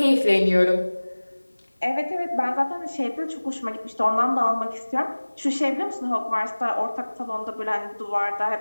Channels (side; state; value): both; inverted; correlation -1.00